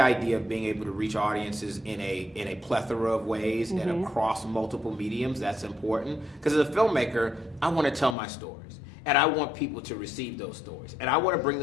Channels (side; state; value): right; drops out; at 8.2 s